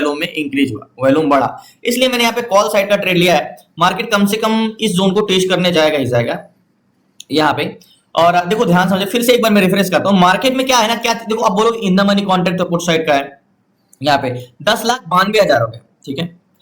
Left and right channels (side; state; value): both; identical; correlation 1.00